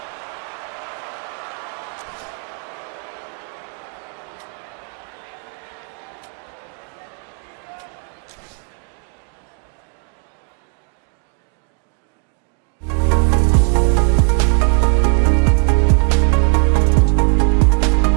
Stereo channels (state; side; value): quieter; left; 39.7 dB